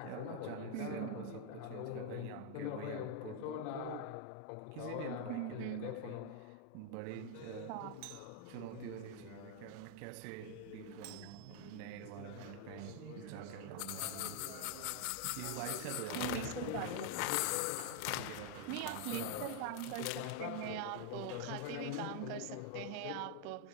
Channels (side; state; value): both; different; correlation 0.00